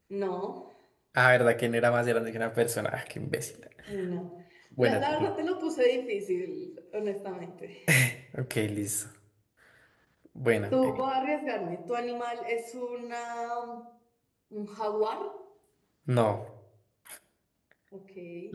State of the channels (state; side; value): identical; both; correlation 1.00